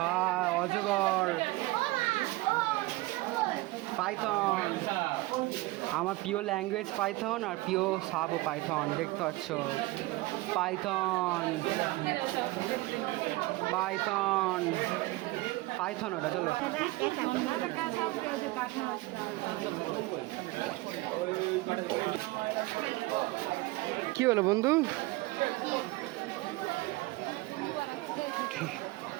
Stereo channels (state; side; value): quieter; left; 20.9 dB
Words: অজগর পাইথন আমার প্রিয় ল্যাঙ্গুয়েজ পাইথন আর প্রিয় সাপও পাইথন দেখতে পাচ্ছ পাইথন পাইথন পাইথন ওটা চলো কি হলো বন্ধু